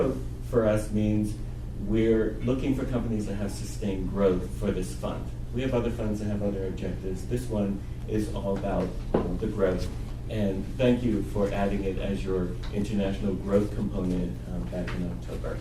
for us means we're looking for companies that have sustained growth for this fund. We have other funds that have other objectives. This one is all about the growth. And thank you for adding it as your international growth component back in October.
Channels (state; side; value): identical; both; correlation 1.00